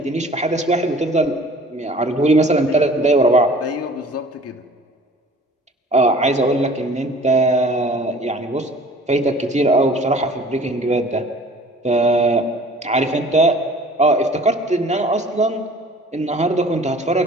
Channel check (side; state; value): both; normal; correlation 0.48